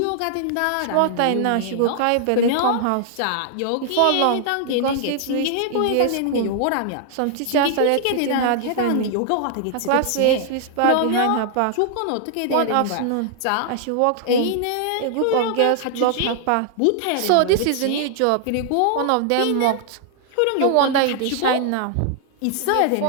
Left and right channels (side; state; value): both; different; correlation -0.01